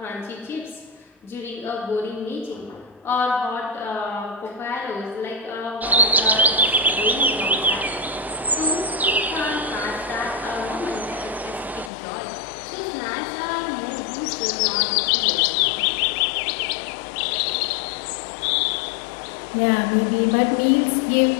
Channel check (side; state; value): right; drops out; at 11.9 s